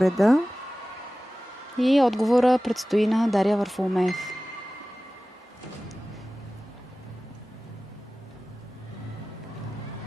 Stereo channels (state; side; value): normal; both; correlation 0.97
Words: И отговора предстои на Дария Варфоломеев.